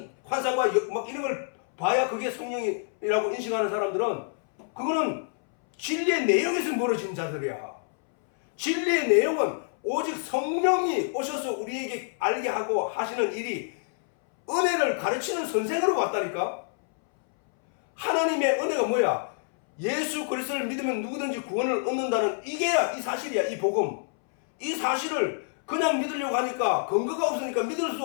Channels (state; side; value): silent; right; 60 dB below the other